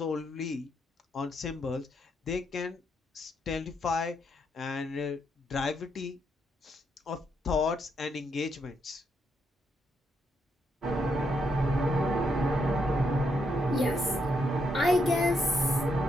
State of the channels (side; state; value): both; normal; correlation 0.78